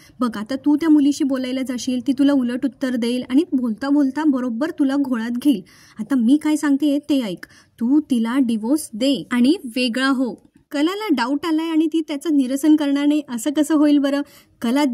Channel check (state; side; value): identical; both; correlation 1.00